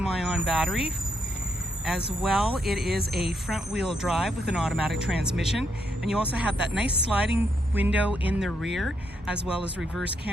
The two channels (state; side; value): normal; both; correlation 0.78